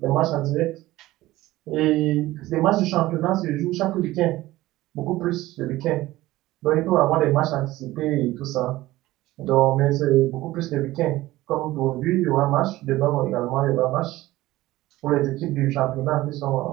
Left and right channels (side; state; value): left; quieter; 17.2 dB